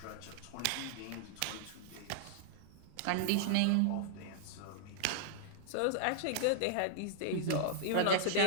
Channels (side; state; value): both; different; correlation -0.01